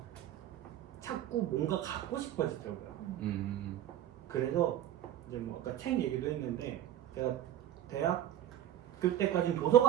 자꾸 뭔가 갖고 싶어지더라고요. 그래서 이제 뭐 아까 책 얘기도 했는데 제가 대학교 때까지는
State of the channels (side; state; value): left; quieter; 11.9 dB